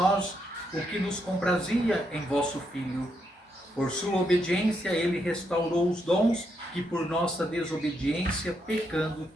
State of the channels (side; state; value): both; normal; correlation 0.79